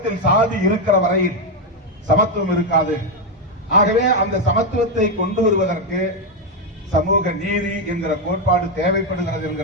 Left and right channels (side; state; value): both; normal; correlation 0.05